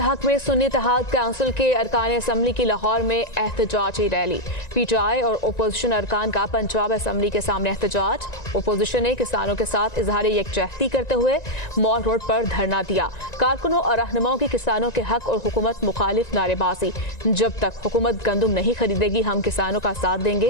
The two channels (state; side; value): late; right; 1.9 ms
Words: में सुन्नी इत्तेहाद काउंसिल के अरकान असम्बली की लाहौर में एहतजाजी रैली। पीटीआई और ओपोजिशन अरकान का पंजाब असम्बली के सामने एहतजाज। ओपोजिशन ने किसानों के साथ इजहार यकजहती करते हुए मॉल रोड पर धरना दिया। कारकुनों और रहनुमाओं की किसानों के हक और हुकूमत मुखालिफ नारेबाजी। जब तक हुकूमत गंदम नहीं खरीदेगी हम किसानों का साथ